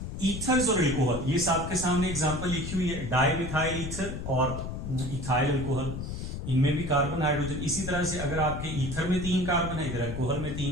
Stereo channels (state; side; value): noise; left; rumble, 6 dB below the sound